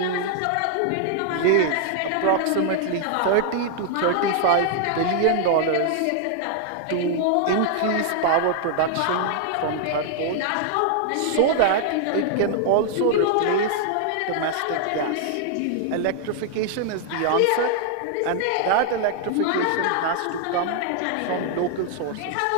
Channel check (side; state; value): both; different; correlation 0.00